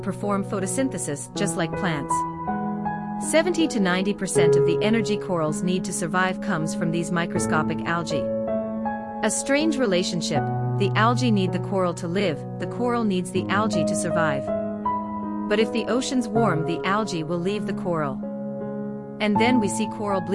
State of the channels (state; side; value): identical; both; correlation 1.00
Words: perform photosynthesis just like plants. 70 to 90% of the energy corals need to survive comes from these microscopic algae. A strange relationship. The algae need the coral to live, the coral needs the algae to survive. But if the oceans warm, the algae will leave the coral. And then we see coral